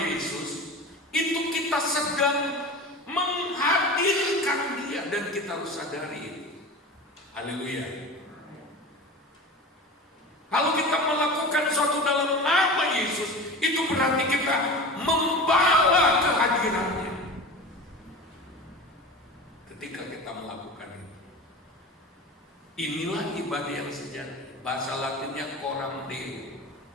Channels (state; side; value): normal; both; correlation 0.32